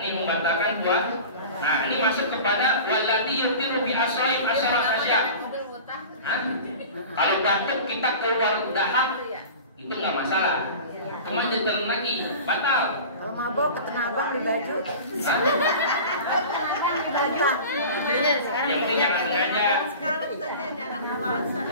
membatalkan puasa. Nah, ini masuk kepada walladzi yutiru bi asaib asyara asya. Kalau batuk kita keluar dahak itu nggak masalah. Cuma ditelan lagi, batal. Kalau mabok ketena abang di baju. Yang penting jangan sengaja.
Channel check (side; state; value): both; inverted; correlation -0.36